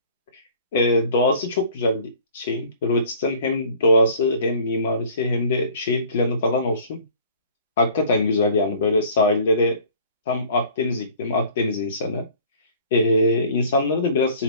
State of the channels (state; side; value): inverted; both; correlation -0.51